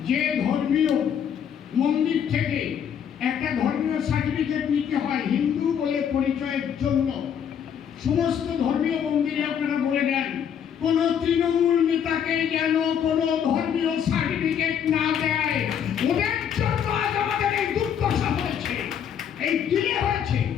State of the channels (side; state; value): right; quieter; 8.4 dB